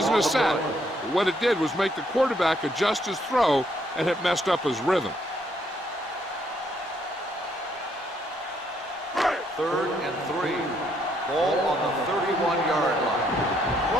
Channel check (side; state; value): both; normal; correlation 0.71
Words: a sack. But what it did was make the quarterback adjust his throw, and it messed up his rhythm. 3rd and 3. Ball on the 31-yard line.